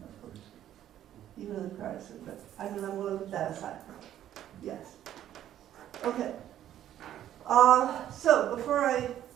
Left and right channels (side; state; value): left; quieter; 11.6 dB